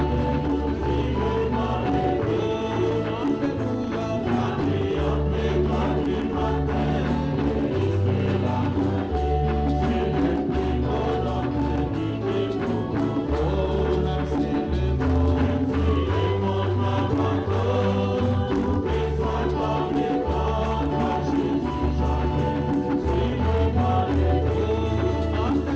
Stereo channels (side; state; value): both; identical; correlation 1.00